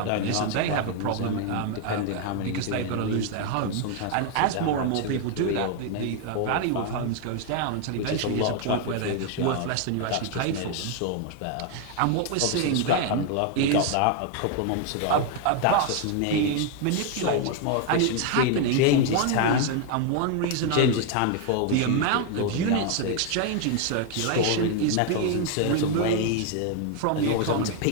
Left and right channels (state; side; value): different; both; correlation 0.01